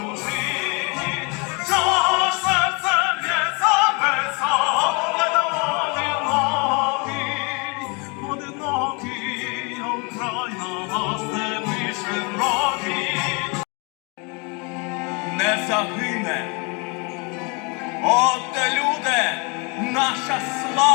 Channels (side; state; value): right; quieter; 31.5 dB